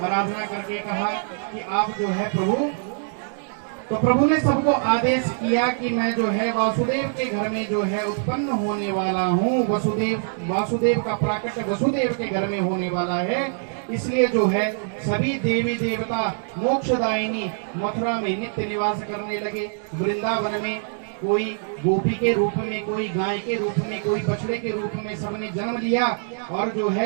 आराधना करके कहा कि आप जो है प्रभु। तो प्रभु ने सबको आदेश किया कि मैं जो है वासुदेव के घर में जो है उत्पन्न होने वाला हूँ। वासुदेव का प्राकट्य वसुदेव के घर में होने वाला है। इसलिए जो है सभी देवी देवता मोक्षदायिनी मथुरा में नित्य निवास करने लगे। वृंदावन में कोई गोपी के रूप में, कोई गाय के रूप में, कोई बछड़े के रूप में सबने जन्म लिया। और जो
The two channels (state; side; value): silent; left; digital silence